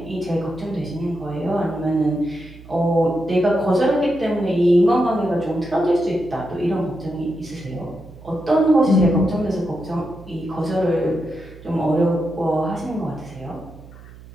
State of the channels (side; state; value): right; noise; hum, 19 dB below the sound